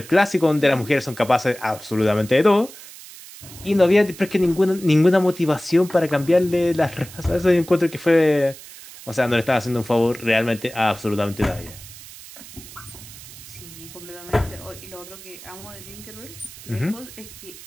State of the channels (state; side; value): noise; right; hiss, 17 dB below the sound